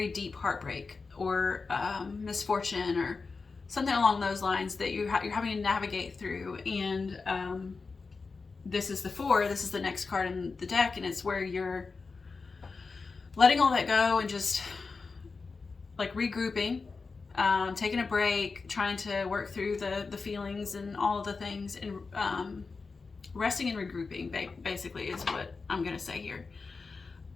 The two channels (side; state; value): right; quieter; 4.4 dB